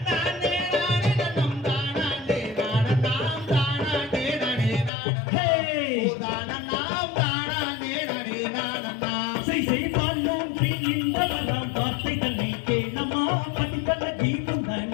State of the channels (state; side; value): drops out; right; at 4.9 s